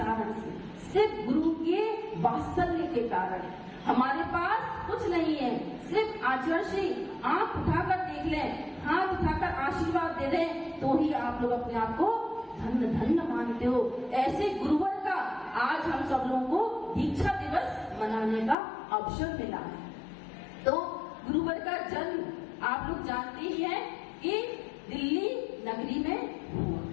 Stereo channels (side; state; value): right; drops out; at 18.6 s